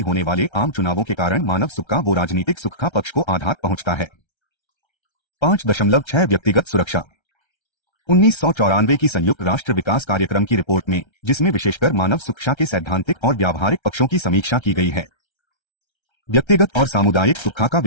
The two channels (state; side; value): late; right; 1.3 ms